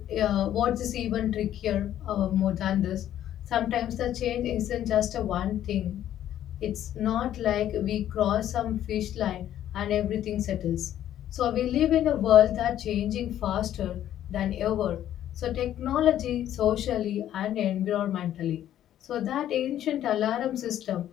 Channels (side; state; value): right; quieter; 11.6 dB